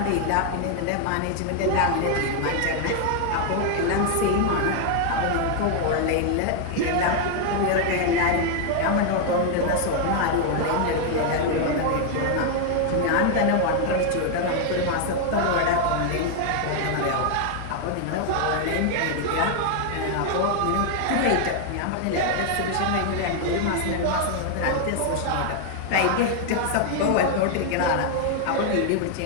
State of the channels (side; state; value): both; different; correlation 0.00